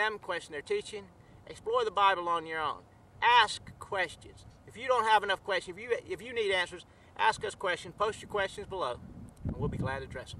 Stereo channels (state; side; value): identical; both; correlation 1.00